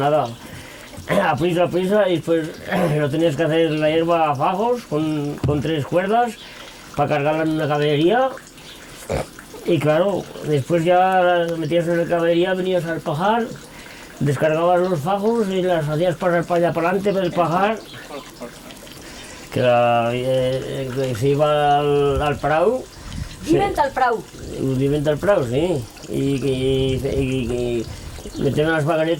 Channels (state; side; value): identical; both; correlation 1.00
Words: a prisa, y después lo tenías que hacer la hierba a fajos con 3 cuerdas para cargarla en una caballería. Y claro, después ya metías en la caballería, venías al pajar, descargabas los fajos y las hacías pasar para allá para adelante del pajar, que se iba al prau. Viven al prau. Viven al prau, sí. Y metían las